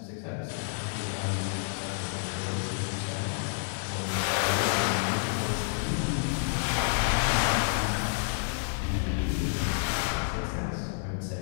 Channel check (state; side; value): silent; right; digital silence